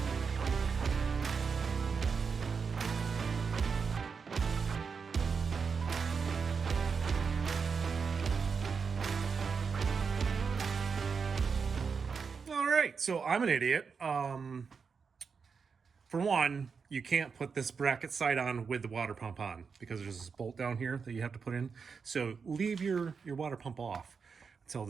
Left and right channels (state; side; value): quieter; left; 5.6 dB